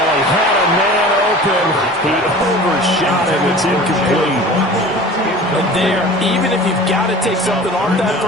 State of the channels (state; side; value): normal; both; correlation 0.40